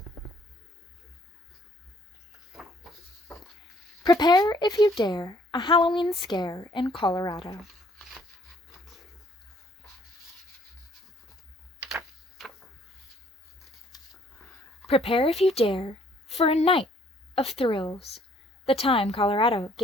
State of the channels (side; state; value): both; normal; correlation 0.62